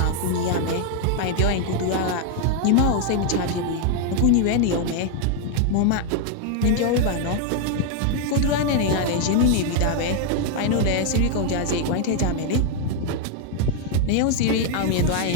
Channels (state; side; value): different; both; correlation 0.00